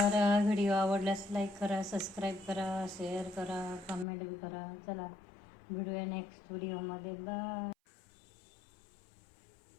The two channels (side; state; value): right; drops out; at 4.0 s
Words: व्हिडिओ आवडल्यास लाईक करा, सबस्क्राईब करा, शेअर करा, कमेंट बी करा. चला भेटूया नेक्स्ट व्हिडिओमध्ये. बाय.